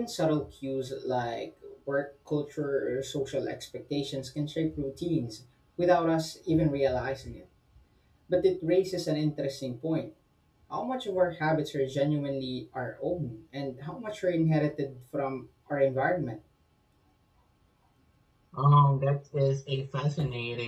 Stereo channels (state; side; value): identical; both; correlation 1.00